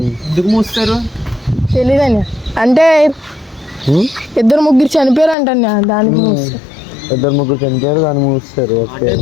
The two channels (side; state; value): right; drops out; at 5.4 s